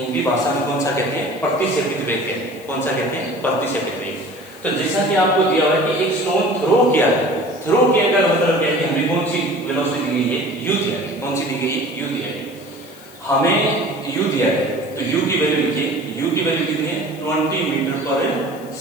भाषा में कौन सा कहते हैं प्रतिसेपित वेग कहते हैं। कौन सा कहते हैं प्रतिसेपित वेग। तो जैसा कि आपको दिया हुआ है कि एक स्टोन थ्रो किया है, थ्रो किया का मतलब क्या है कि हमें कौन सी वेलोसिटी दी गई है, u दिया है। कौन सी दी गई है, u दिया है। हमें u दिया है तो u की वैल्यू लिखिए, u की वैल्यू कितनी है 20 मीटर पर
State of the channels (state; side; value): noise; left; hiss, 23 dB below the sound